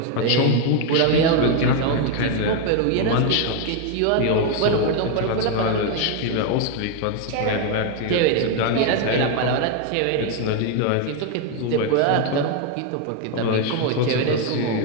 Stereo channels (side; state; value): both; different; correlation 0.01